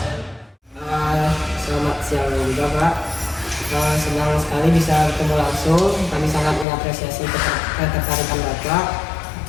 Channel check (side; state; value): right; drops out; at 6.7 s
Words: Selamat siang juga Pak. Senang sekali bisa bertemu langsung. Kami sangat mengapresiasi ketertarikan Bapak.